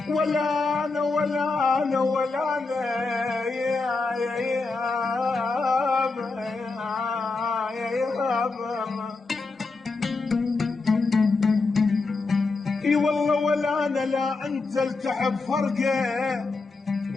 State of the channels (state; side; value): quieter; right; 3.8 dB